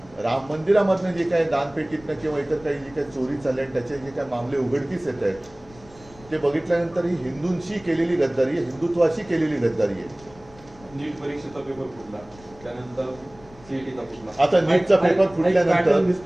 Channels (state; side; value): noise; left; rumble, 23 dB below the sound